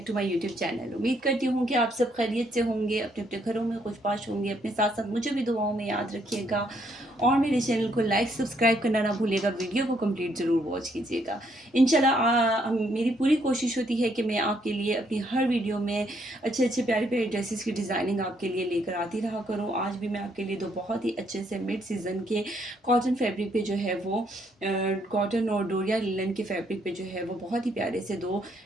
to my YouTube channel. उम्मीद करती हूँ कि आप सब खैरियत से होंगे, अपने अपने घरों में खुशबाश होंगे। अपने साथ साथ मुझे भी दुआओं में याद रखिएगा और मेरे चैनल को लाइक सब्सक्राइब करना ना भूलिएगा। वीडियो को कंप्लीट ज़रूर वॉच कीजिएगा। इंशाल्लाह मेरी पूरी कोशिश होती है कि मैं आपके लिए अपनी हर वीडियो में अच्छे अच्छे प्यारे प्यारे ड्रेसेस की डिज़ाइनिंग आपके लिए लेकर आती रहा करूँ। आज भी मैं आपके लिए दो बहुत ही अच्छे से मिड सीज़न के कॉटन फैब्रिक पे जो है वो कॉटन और डोरिया लिनन के फैब्रिक पे जो है वो बहुत ही प्यारे से दो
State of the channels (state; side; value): normal; both; correlation 0.71